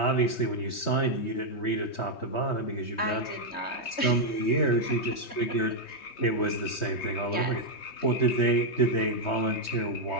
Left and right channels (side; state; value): right; late; 3.2 ms